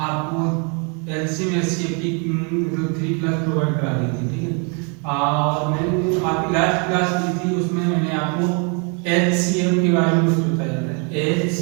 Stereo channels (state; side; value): quieter; left; 36.2 dB